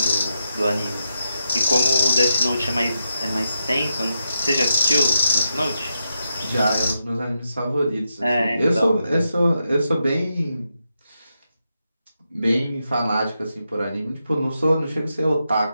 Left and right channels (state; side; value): inverted; both; correlation -0.85